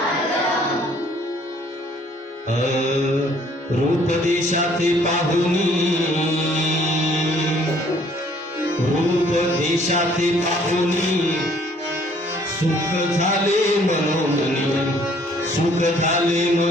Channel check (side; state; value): both; normal; correlation 0.60